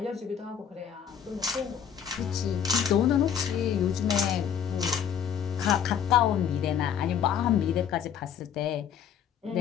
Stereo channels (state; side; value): quieter; right; 8.5 dB